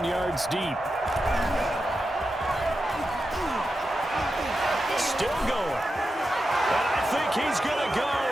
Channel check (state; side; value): normal; both; correlation 0.89